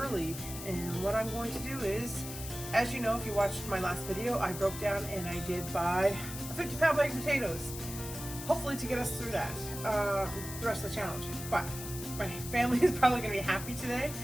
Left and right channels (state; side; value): noise; left; hiss, 10 dB below the sound